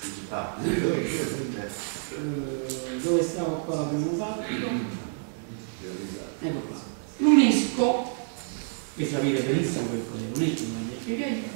Dove stavo qua l'abbiamo fatto? Ecco qua. L'UNESCO, che sapete benissimo che cos'è l'UNESCO, non vi spiegate.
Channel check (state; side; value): silent; left; 57 dB below the other